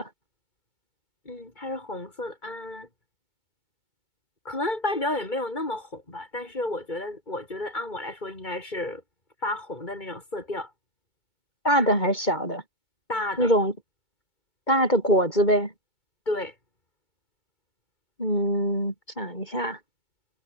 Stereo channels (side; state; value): right; late; 2.3 ms